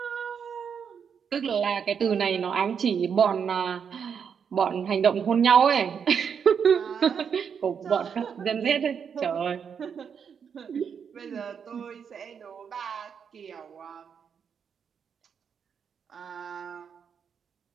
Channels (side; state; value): left; quieter; 7.0 dB